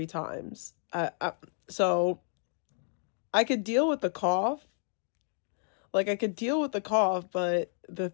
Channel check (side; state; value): right; silent; digital silence